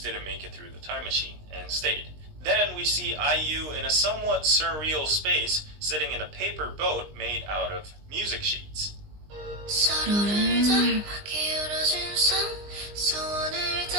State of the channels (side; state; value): left; late; 19 ms